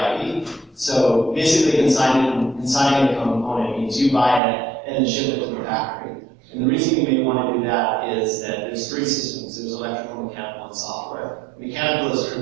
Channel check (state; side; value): drops out; left; at 4.4 s